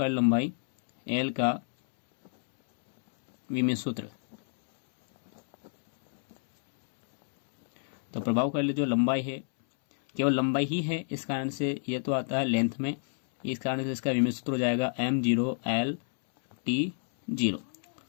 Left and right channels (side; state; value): right; silent; 59 dB below the other